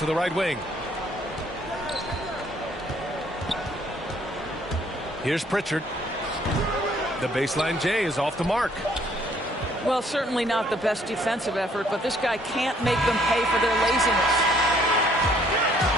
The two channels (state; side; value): normal; both; correlation 0.63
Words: the right wing. Here's Pritchard. The baseline J is off the mark. Well, certainly not the best defensive effort, but this guy can't make them pay for their laziness.